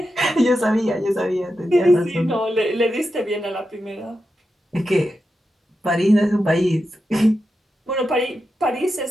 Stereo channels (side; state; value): both; normal; correlation 0.89